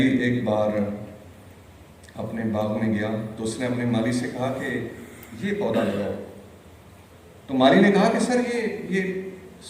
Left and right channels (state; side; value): identical; both; correlation 1.00